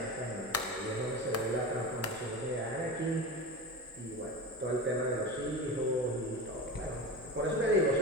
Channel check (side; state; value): both; normal; correlation 0.27